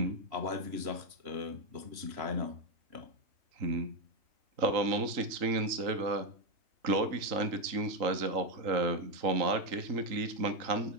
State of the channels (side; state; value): left; late; 3.8 ms